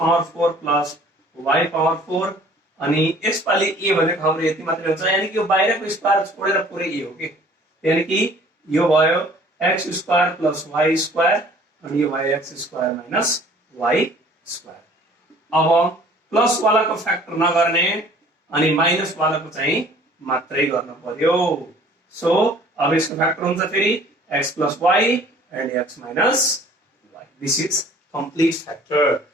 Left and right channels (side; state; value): both; normal; correlation 0.53